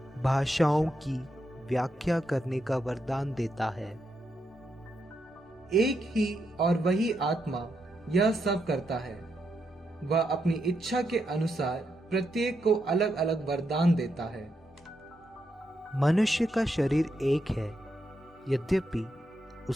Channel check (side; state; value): both; normal; correlation 0.82